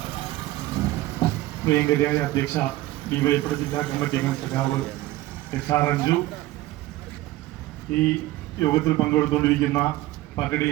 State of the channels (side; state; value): left; quieter; 16.8 dB